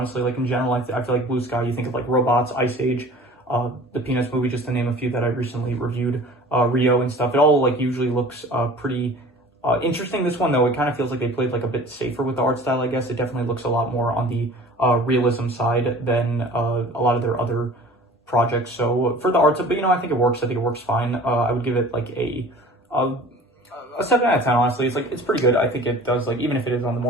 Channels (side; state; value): both; normal; correlation 0.44